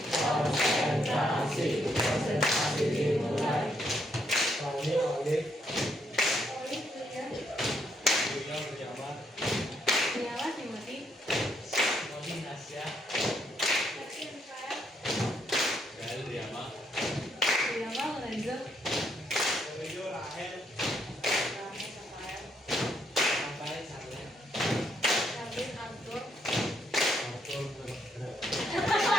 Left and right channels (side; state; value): both; normal; correlation 0.74